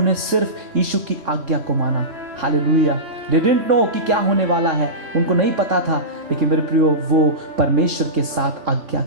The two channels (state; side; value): late; left; 3.5 ms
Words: सिर्फ यीशु की आज्ञा को माना। हालेलुया। They didn't know कि क्या होने वाला है, उनको नहीं पता था, लेकिन मेरे प्रियो वो परमेश्वर के साथ